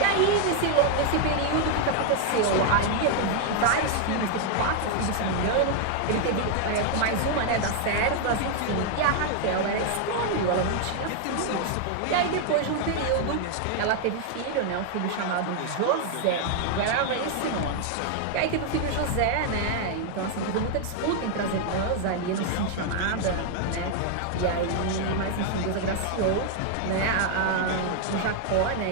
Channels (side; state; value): both; different; correlation 0.00